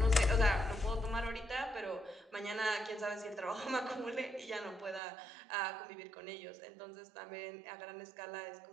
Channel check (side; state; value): left; drops out; at 5.0 s